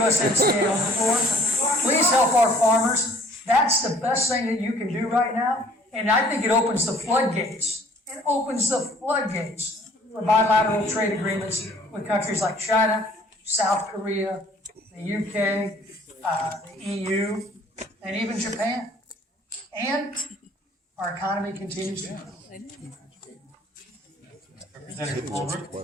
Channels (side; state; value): both; normal; correlation 0.56